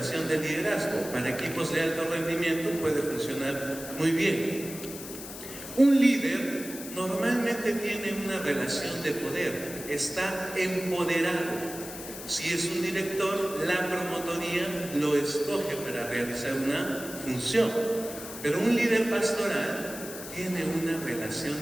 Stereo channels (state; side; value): noise; left; hiss, 11 dB below the sound